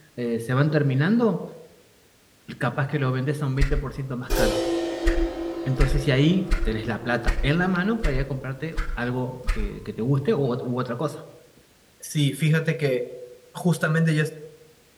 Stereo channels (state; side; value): identical; both; correlation 1.00